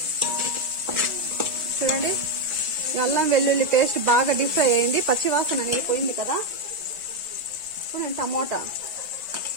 చూడండి, అల్లం వెల్లుల్లి పేస్ట్ బాగా డీప్ ఫ్రై అయింది, పచ్చివాసన అనేది పోయింది కదా. ఇప్పుడు నేను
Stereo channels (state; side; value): late; left; 1.5 ms